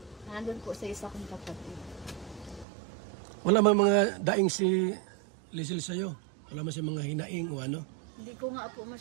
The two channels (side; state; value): left; drops out; at 2.7 s